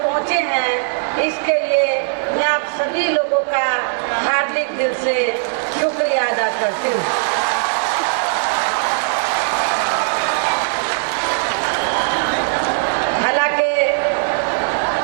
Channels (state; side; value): silent; left; 61 dB below the other